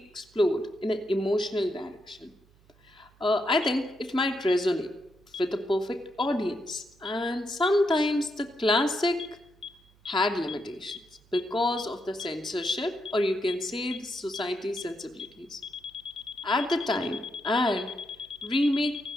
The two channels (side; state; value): right; noise; hum, 30 dB below the sound